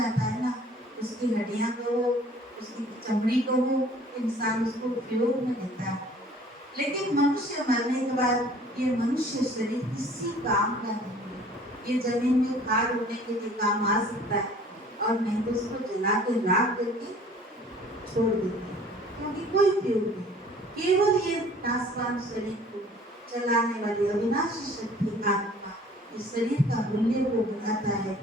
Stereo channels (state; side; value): normal; both; correlation 0.51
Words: है ना, उसकी हड्डियां को हो, उसकी चमड़ी को हो, इंसान उसको उपयोग में लेता है, लेकिन मनुष्य मरने के बाद ये मनुष्य शरीर किसी काम का नहीं है। ये जमीन में खाद होने के लिए काम आ सकता है और नहीं तो उसको जला के राख करके छोड़ देते हैं, क्योंकि कोई उपयोग नहीं। केवल ये नाशवान शरीर को चलाने वाली अविनाशी शक्ति आत्मा इस शरीर का मूल्य को बताता है